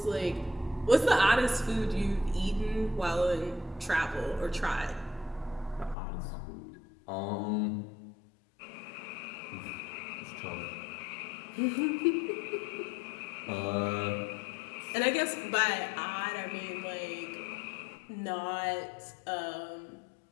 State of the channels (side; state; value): right; drops out; at 6.0 s